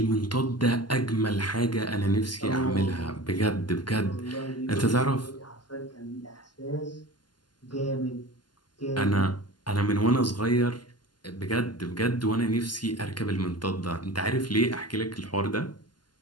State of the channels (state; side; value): late; right; 0.71 ms